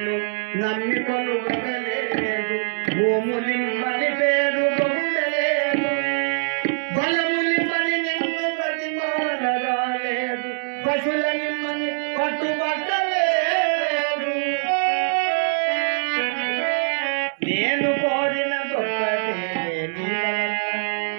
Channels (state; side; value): silent; left; 63 dB below the other